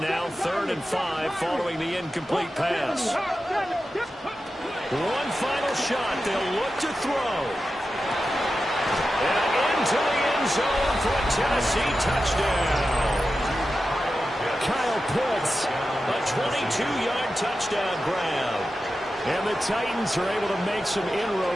3rd and 5, following the incomplete pass. One final shot. They'll look to throw. And into the end zone for a Tennessee touchdown. Kyle Pitts, a 22-yard touchdown grab. And the Titans are able to make some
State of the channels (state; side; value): normal; both; correlation 0.92